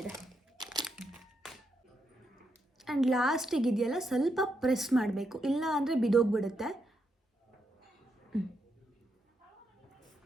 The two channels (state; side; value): normal; both; correlation 0.81